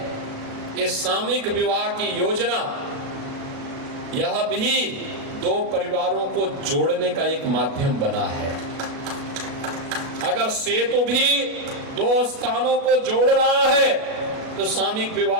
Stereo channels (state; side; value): late; left; 37 ms